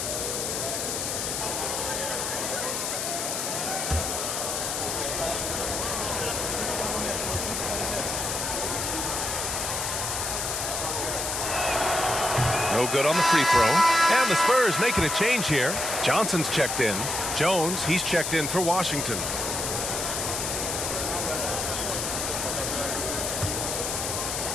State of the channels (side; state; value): left; noise; hiss, 2 dB below the sound